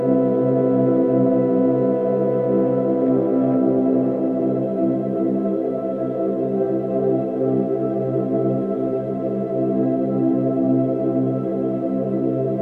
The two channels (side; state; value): both; identical; correlation 1.00